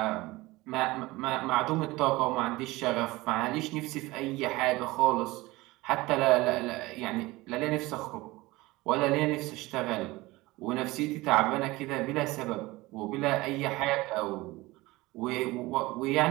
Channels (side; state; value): left; quieter; 20.4 dB